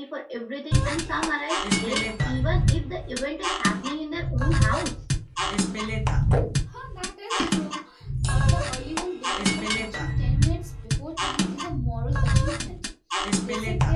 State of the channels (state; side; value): identical; both; correlation 1.00